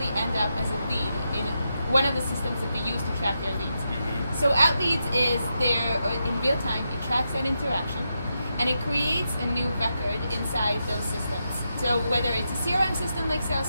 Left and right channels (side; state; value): both; inverted; correlation -0.85